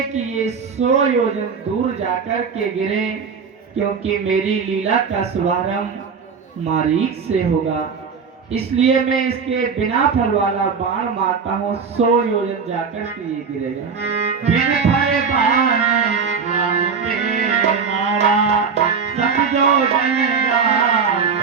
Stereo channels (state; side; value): quieter; left; 5.8 dB